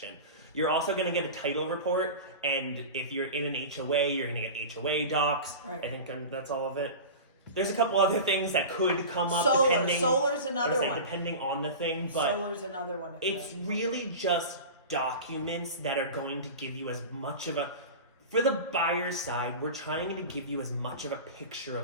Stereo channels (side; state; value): both; inverted; correlation -0.31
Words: You're also going to get a title report. And if you're in an HOA, you're going to get HOA docs. Right. I think that's all of it. There's a couple other things that could come up. Solar's another one. Depending on the thing. But solar's another one. It's really just documents that are going to give you as much of a... For the buyer's side, we're trying to give you as much of a picture